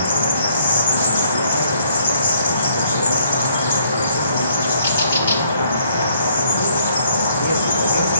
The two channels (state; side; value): inverted; both; correlation -0.66